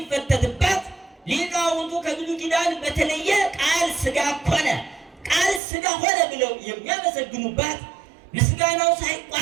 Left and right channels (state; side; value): drops out; left; at 5.6 s